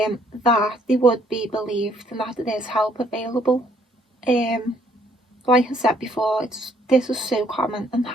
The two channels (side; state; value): both; normal; correlation 0.65